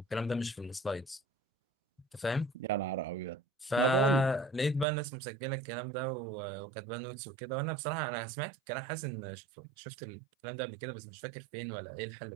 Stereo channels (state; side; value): drops out; left; at 4.9 s